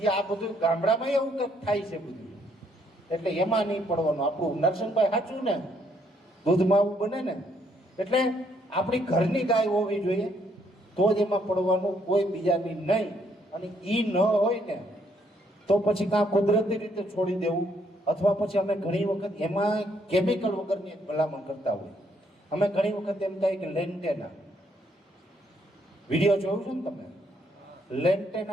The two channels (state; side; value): normal; both; correlation 0.70